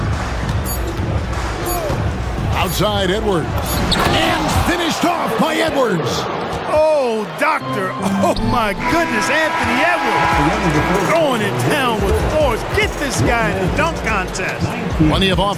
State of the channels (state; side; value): identical; both; correlation 1.00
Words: Outside Edwards. And finished off by Edwards. Oh, doctor. Oh, my goodness. Anthony Edwards throwing it down with force. Get this guy in a dunk contest. Plenty of